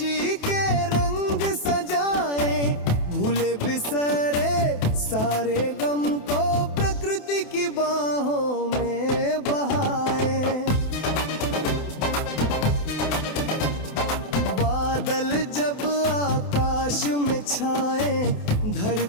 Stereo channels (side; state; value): right; late; 28 ms